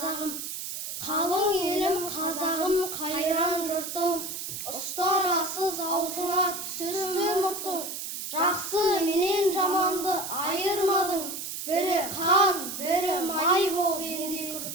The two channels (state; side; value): noise; right; hiss, 6 dB below the sound